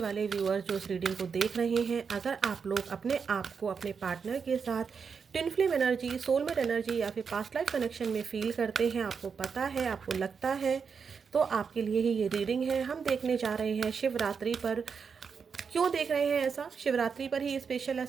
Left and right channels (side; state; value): left; quieter; 6.0 dB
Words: व्यूअर्स जो इस रीडिंग को देख रहे हैं। अगर आप लोग अपने आप को अपने पार्टनर के साथ twin flame energy, soulmate energy या फिर पास्ट लाइफ कनेक्शन में फील करते हैं, आपको पता है, आपको लगता है, तो आपके लिए ही ये रीडिंग है। हम देखने जा रहे हैं शिवरात्रि पर। क्यों देख रहे हैं ऐसा? शिवरात्रि पर ही स्पेशल